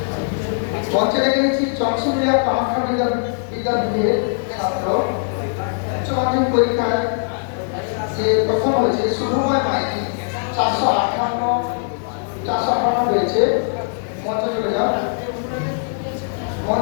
মঞ্চে রেখেছি চন্দ্রমিলা কামাখ্যা বিদ্যাপীঠের ছাত্র, উচ্চ মাধ্যমিক পরীক্ষায় যে প্রথম হয়েছে শুভময় মাইতি, 458 হয়েছে। মঞ্চে চলে যাও।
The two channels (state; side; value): silent; right; 63 dB below the other